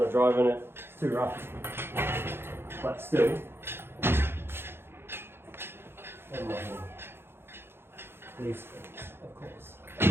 to drive in it, it's too rough. But still, these things, of course.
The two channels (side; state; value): left; late; 0.11 ms